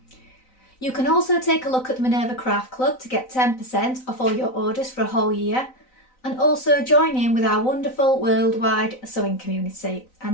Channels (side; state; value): right; late; 3.9 ms